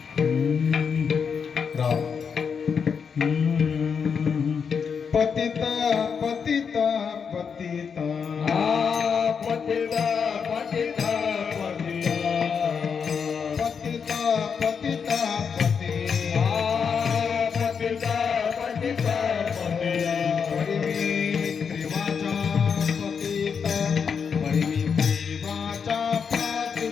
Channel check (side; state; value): right; quieter; 6.4 dB